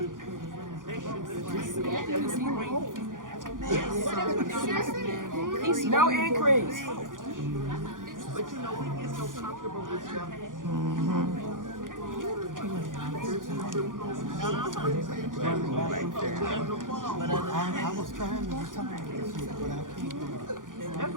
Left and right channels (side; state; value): left; late; 0.89 ms